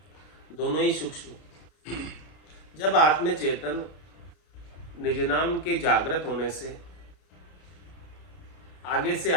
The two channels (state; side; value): late; right; 32 ms